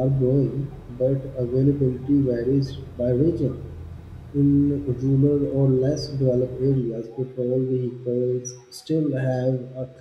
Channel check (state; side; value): identical; both; correlation 1.00